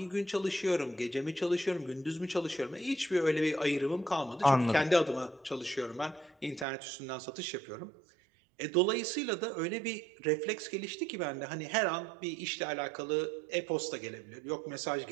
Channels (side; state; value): left; drops out; at 6.7 s